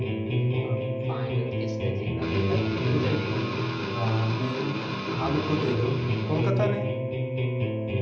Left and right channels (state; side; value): identical; both; correlation 1.00